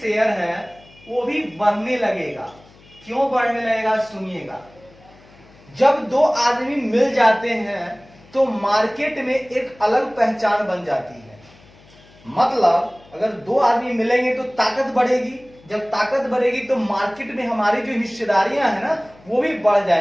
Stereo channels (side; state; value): left; noise; hum, 26 dB below the sound